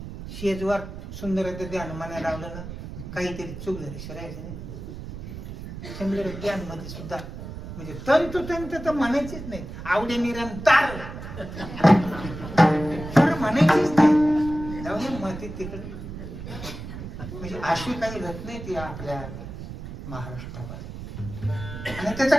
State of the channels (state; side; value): noise; right; rumble, 10 dB below the sound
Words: शेजवार सुंदर ध्यान म्हणायला लावलं ना काहीतरी चूक झाली शिरायचं नाही. सुंदर ध्यान मध्ये सुद्धा म्हणजे तंतोतंत तर म्हणायचीच नाही. आवडे निरंतर म्हणायचीच नाही. जाऊन माती तिकडे म्हणजे अशी काही रत्न नाही ती आपल्या महाराष्ट्रामध्ये आणि